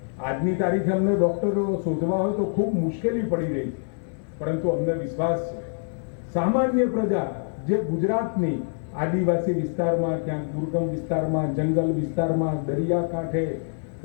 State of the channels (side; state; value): right; silent; digital silence